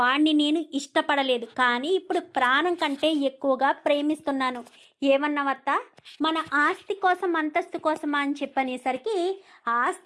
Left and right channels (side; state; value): both; identical; correlation 1.00